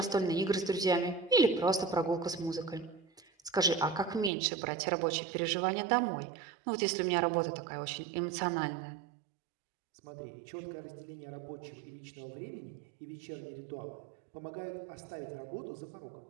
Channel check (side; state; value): left; drops out; at 4.3 s